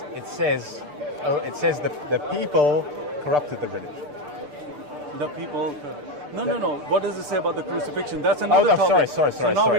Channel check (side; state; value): left; late; 6.8 ms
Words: It says the people corrupted the religion. The people. No. What does it say about the crucifixion? That's another topic. Sorry. So now